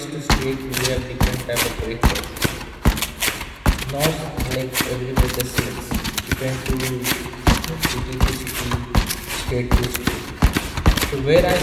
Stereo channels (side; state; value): both; identical; correlation 1.00